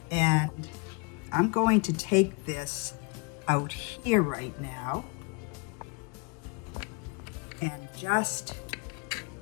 And I'm going to take this out here right now and just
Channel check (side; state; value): right; quieter; 31.0 dB